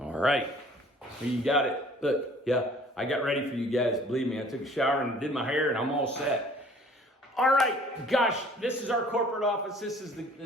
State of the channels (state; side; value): normal; both; correlation 0.53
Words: right, you got it. Look, yeah, I got ready for you guys. Believe me, I took a shower and did my hair and I'm all set. All right, gosh, this is our corporate office. This is